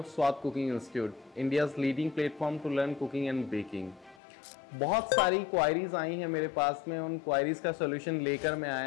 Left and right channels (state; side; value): drops out; right; at 4.2 s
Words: Swad Cooking Institute, India's leading platform to learn cooking and baking. बहुत सारी queries आई हैं मेरे पास में, उन queries का सोल्यूशन लेकर मैं